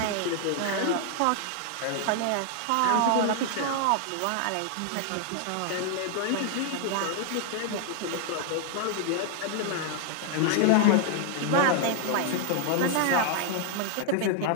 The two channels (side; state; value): both; different; correlation 0.00